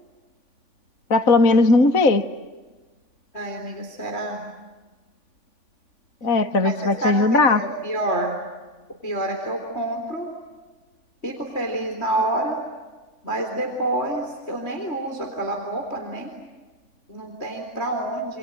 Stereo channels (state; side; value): late; right; 3.5 ms